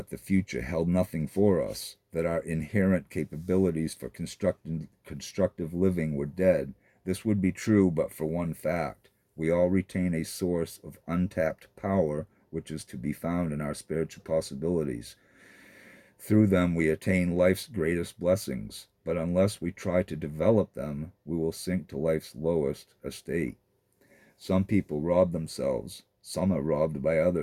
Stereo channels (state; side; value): identical; both; correlation 1.00